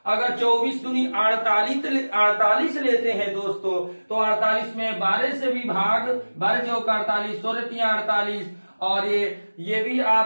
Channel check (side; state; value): both; inverted; correlation -1.00